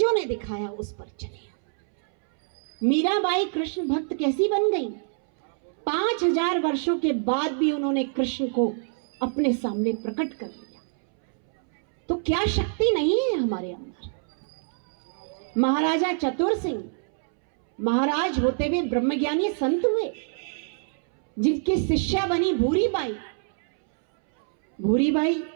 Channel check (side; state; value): left; silent; 61 dB below the other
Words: ने दिखाया उस पर चले। मीराबाई कृष्ण भक्त कैसी बन गई? 5000 वर्षों के बाद भी उन्होंने कृष्ण को अपने सामने प्रकट कर लिया। तो क्या शक्ति नहीं है हमारे अंदर? महाराजा चतुर सिंह महाराज होते हुए ब्रह्मज्ञानी संत हुए, जिनकी शिष्या बनी भूरी बाई। भूरी बाई